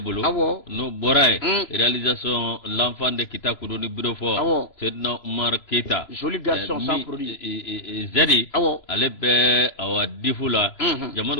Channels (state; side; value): late; right; 3.0 ms